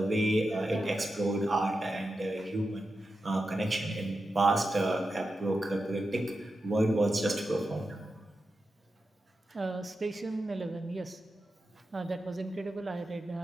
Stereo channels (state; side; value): normal; both; correlation 0.90